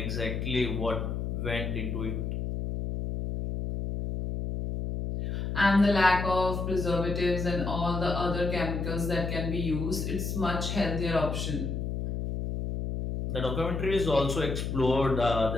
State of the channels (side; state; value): left; noise; hum, 3 dB below the sound